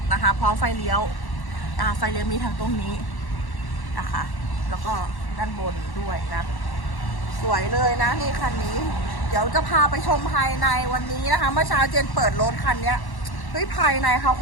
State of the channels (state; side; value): late; right; 1.1 ms